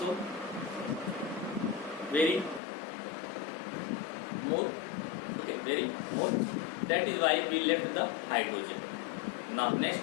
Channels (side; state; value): right; drops out; at 2.6 s